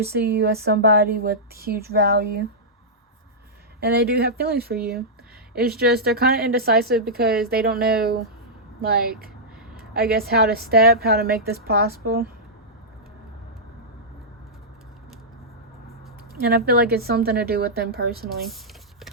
see you as somebody with huge value. And they do have feelings for you. It's just they're kind of indecisive because they don't know, like, I guess how to make this possible. And I feel like it's something to do with them personally.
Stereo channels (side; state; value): both; normal; correlation -0.11